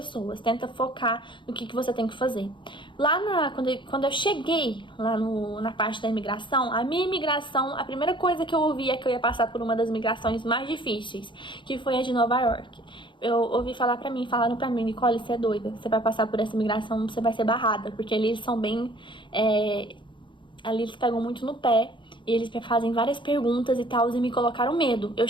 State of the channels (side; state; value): right; late; 0.23 ms